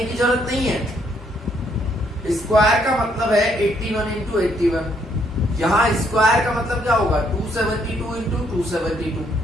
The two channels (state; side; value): normal; both; correlation 0.70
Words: की जरूरत नहीं है. स्क्वायर का मतलब है 81 इंटू 81. यहाँ स्क्वायर का मतलब क्या होगा? 272 इंटू 272.